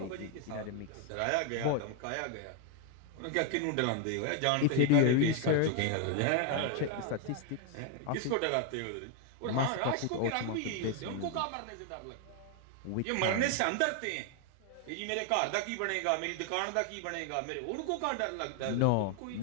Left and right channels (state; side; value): different; both; correlation 0.00